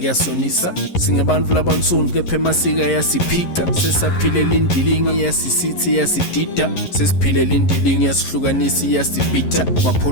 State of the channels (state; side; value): late; right; 11 ms